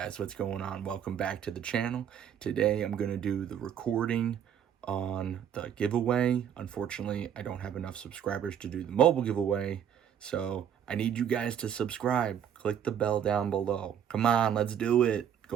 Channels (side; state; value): left; quieter; 8.9 dB